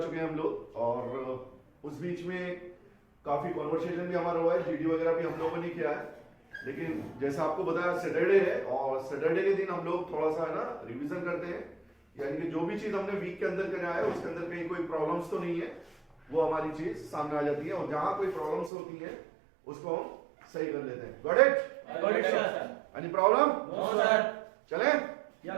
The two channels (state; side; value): drops out; left; at 18.7 s